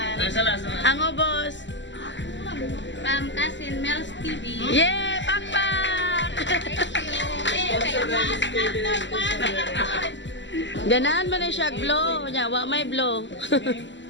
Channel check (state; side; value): late; right; 0.54 ms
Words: Ang ubos. From Cousin Mel's TV. Yay! Pakpak! Ganahan mo na siya blow. Nya, wa may blow.